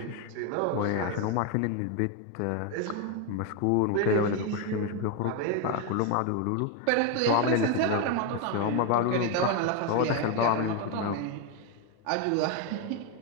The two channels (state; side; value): different; both; correlation 0.01